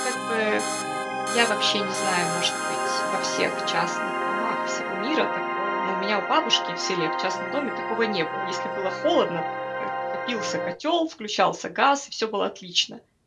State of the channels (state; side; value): identical; both; correlation 1.00